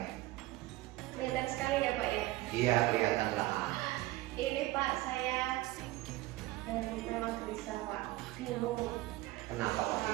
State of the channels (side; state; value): left; quieter; 18.1 dB